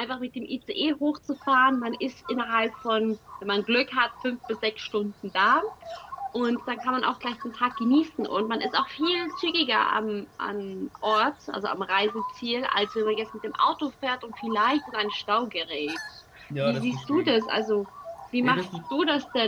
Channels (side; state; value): both; identical; correlation 1.00